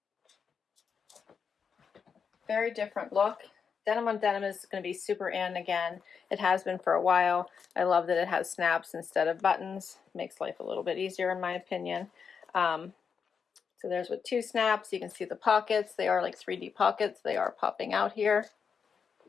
Very different look. Denim on denim is going to be super in again. It has been for a while. I love that it has snaps instead of buttons. Makes life a little bit easier in my opinion. So there's with 2 snaps. You can see the pockets. They are like 3D pockets. They are popping out here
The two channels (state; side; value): quieter; right; 6.3 dB